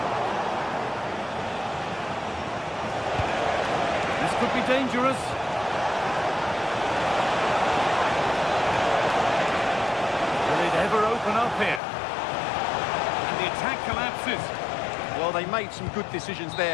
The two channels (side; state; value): right; drops out; at 11.8 s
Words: This could be dangerous. Ever open up here, and the attack collapses. Well, they made some good decisions